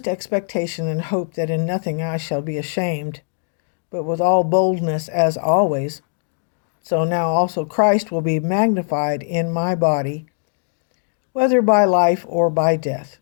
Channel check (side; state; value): right; silent; digital silence